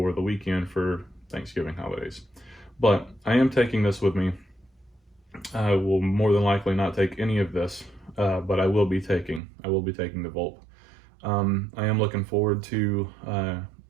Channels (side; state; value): left; drops out; at 9.4 s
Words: the weekend for Thanksgiving holidays. But I am taking this with me. I will more than likely not take any of this, but I will be taking the Volt. I am looking forward to